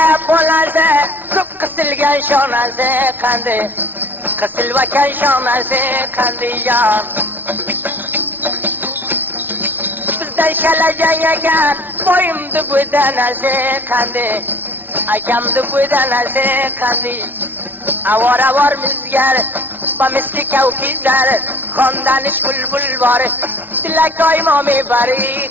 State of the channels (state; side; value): late; left; 0.091 ms